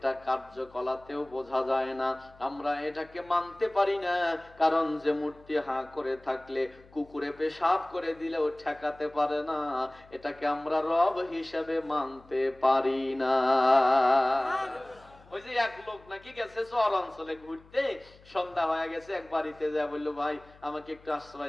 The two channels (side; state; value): left; noise; hum, 25 dB below the sound